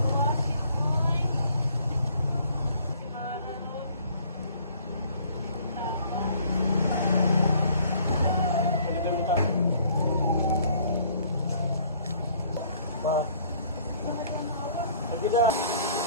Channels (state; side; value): inverted; both; correlation -0.58